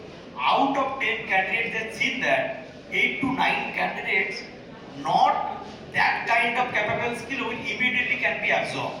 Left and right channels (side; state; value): both; identical; correlation 1.00